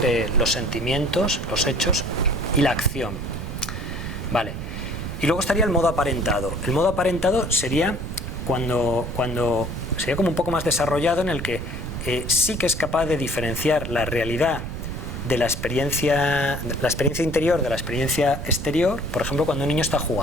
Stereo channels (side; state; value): right; noise; rumble, 6 dB below the sound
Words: los sentimientos, los hechos y la acción. Vale. Y luego estaría el modo aparentado. El modo aparentado sería cuando sería como un poco más desarrollado, en el que sí que es capaz de diferenciar la realidad de la experiencia interior de la experiencia exterior. Por ejemplo, cuando un niño está